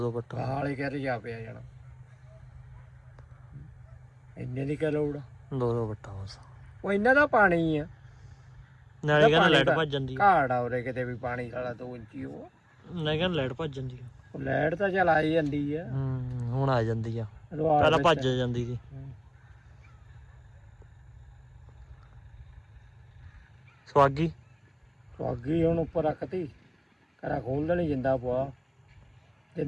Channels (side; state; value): both; identical; correlation 1.00